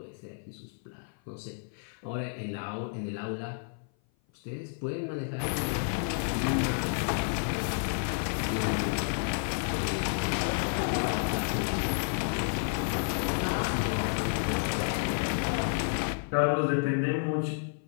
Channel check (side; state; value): right; silent; 55 dB below the other